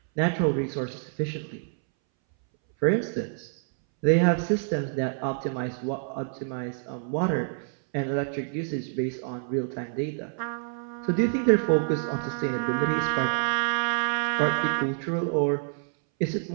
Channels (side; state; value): left; silent; 60 dB below the other